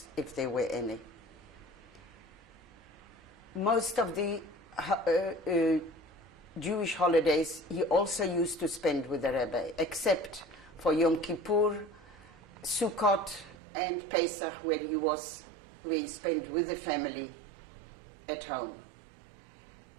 if there were any. Most of the Jewish holidays he also used to spend with the Rebbe, except for Yom Kippur, Sukkot, and Pesach, where he spent with the family at home.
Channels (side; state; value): left; drops out; at 13.6 s